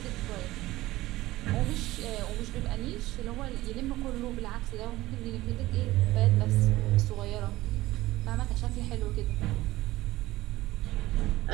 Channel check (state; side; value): quieter; left; 17.3 dB